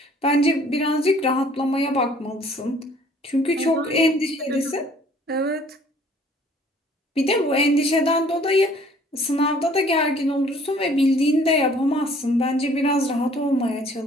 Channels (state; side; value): normal; both; correlation 0.56